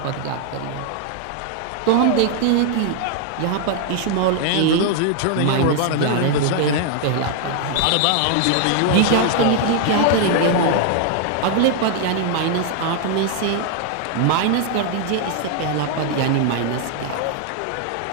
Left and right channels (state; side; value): different; both; correlation 0.00